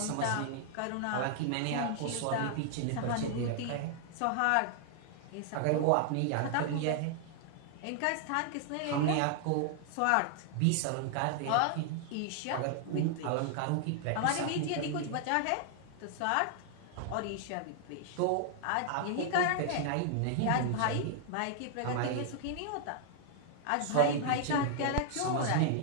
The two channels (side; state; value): both; different; correlation 0.00